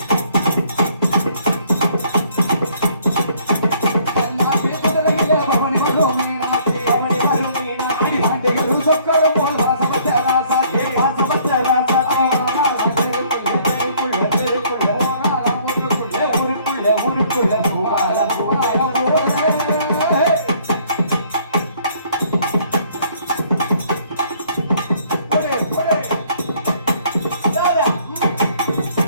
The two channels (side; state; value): both; inverted; correlation -0.61